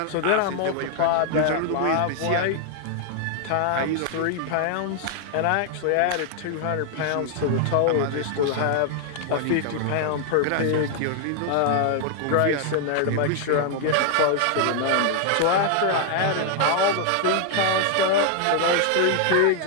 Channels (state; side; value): different; both; correlation 0.00